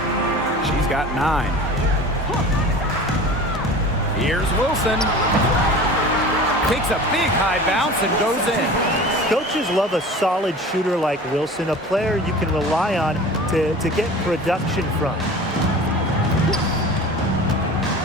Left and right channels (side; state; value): both; normal; correlation 0.38